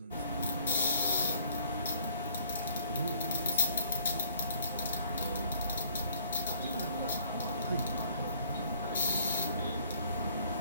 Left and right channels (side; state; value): both; inverted; correlation -0.60